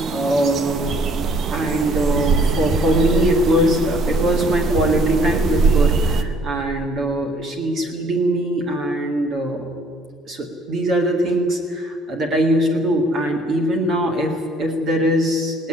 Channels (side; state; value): both; normal; correlation 0.60